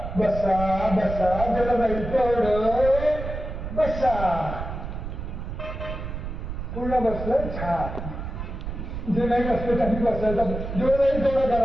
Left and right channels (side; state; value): right; noise; rumble, 6 dB below the sound